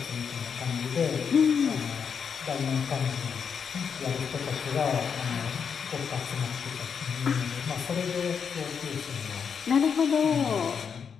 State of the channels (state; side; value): quieter; right; 6.7 dB